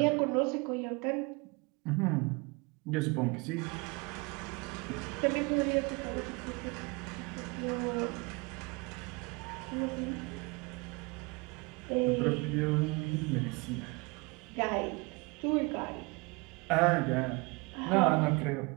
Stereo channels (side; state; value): left; quieter; 27.9 dB